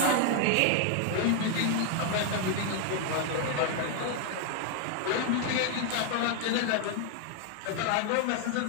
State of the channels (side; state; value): both; different; correlation 0.00